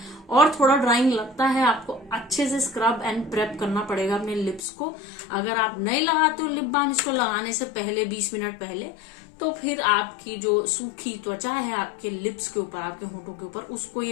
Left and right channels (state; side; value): drops out; right; at 4.6 s